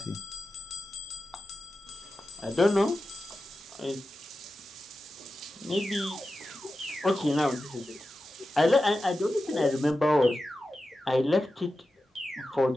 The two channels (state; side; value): normal; both; correlation 0.92